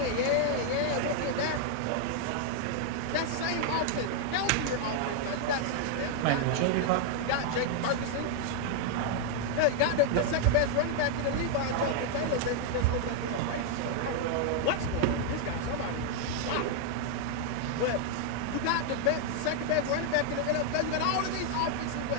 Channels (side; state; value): both; different; correlation 0.00